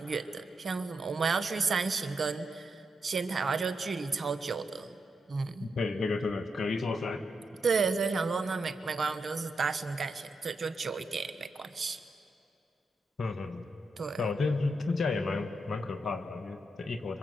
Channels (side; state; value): both; normal; correlation 0.84